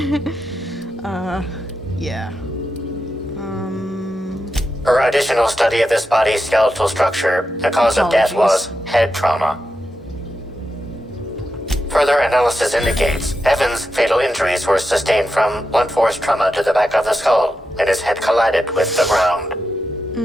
yeah. Per additional study of this body's skeletal structure, the cause of death was head trauma. Further analysis indicates Evan's fatal injuries were sustained from blunt force trauma to the back of the skull, and his head collided with the ground.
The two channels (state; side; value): normal; both; correlation 0.87